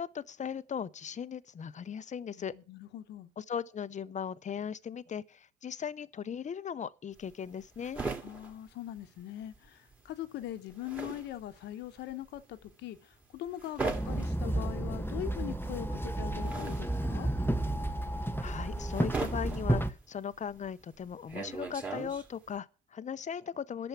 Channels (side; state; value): both; normal; correlation 0.67